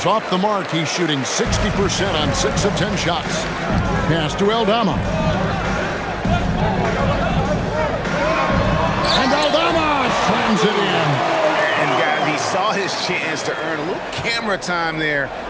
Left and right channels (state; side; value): identical; both; correlation 1.00